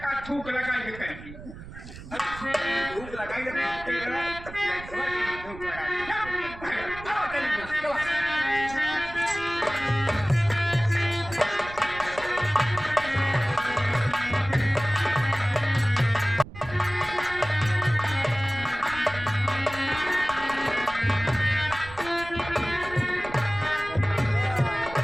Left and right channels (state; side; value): noise; right; rumble, 15 dB below the sound